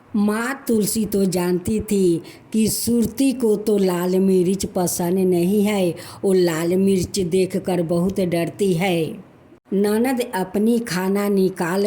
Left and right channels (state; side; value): identical; both; correlation 1.00